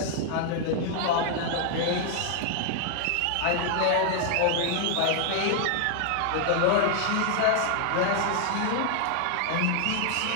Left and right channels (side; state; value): both; different; correlation 0.00